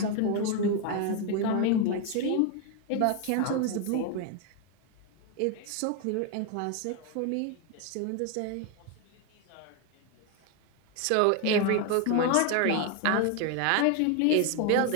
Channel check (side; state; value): both; different; correlation 0.01